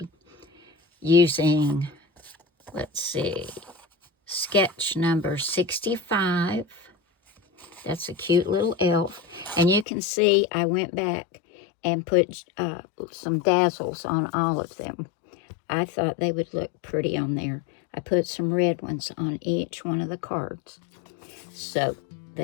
using, let's see, sketch number 65. That's a cute little elf. And you can see I went back and put some Dazzles on all of them. I thought they would look pretty on there. I put some red ones on each one of the cards. So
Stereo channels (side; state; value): right; drops out; at 9.9 s